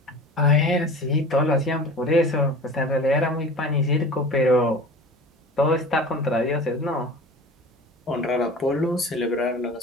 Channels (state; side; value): normal; both; correlation 0.37